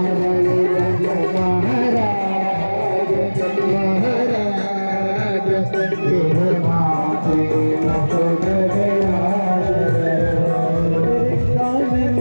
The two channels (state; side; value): inverted; both; correlation -1.00